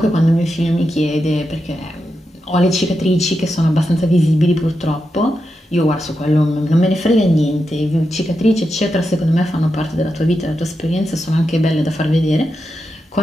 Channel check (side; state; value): both; normal; correlation 0.87